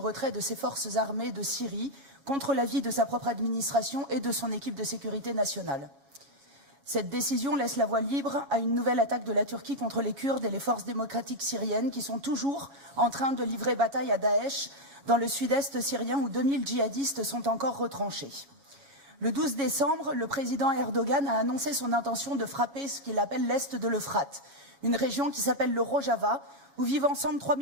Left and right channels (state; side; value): late; left; 7.2 ms